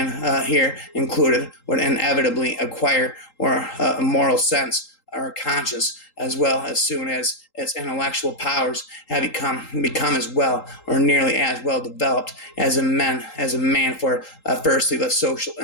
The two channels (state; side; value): late; right; 3.8 ms